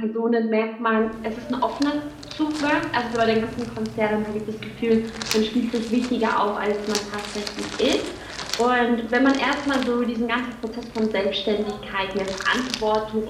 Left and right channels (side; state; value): both; identical; correlation 1.00